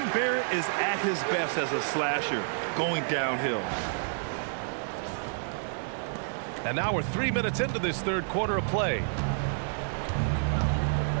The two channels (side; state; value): left; silent; 58 dB below the other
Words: Barrett is at his best as a slasher, going downhill. And now we're 3 minutes into this third quarter of play.